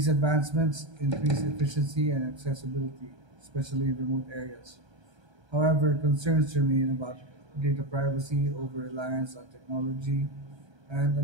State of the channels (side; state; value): left; late; 1.3 ms